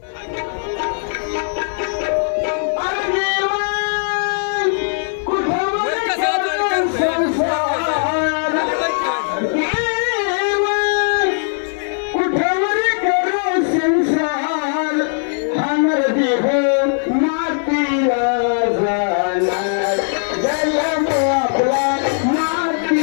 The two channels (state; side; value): silent; right; 67 dB below the other